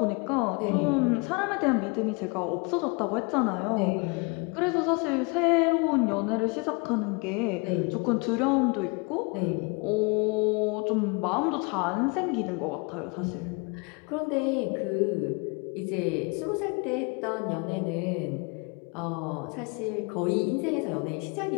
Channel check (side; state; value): right; quieter; 30.8 dB